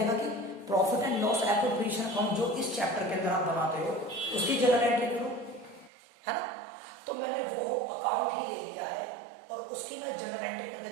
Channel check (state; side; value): drops out; left; at 5.9 s